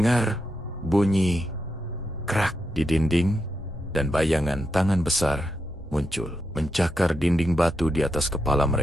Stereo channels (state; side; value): normal; both; correlation 0.84